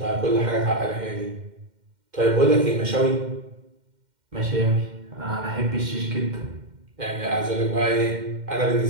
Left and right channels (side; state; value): left; late; 2.1 ms